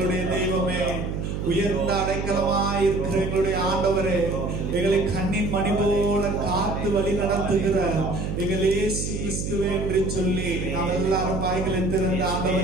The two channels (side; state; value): right; noise; hum, 3 dB below the sound